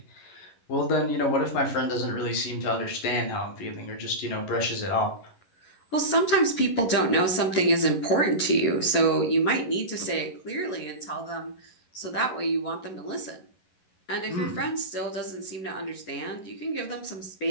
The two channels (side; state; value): right; late; 11 ms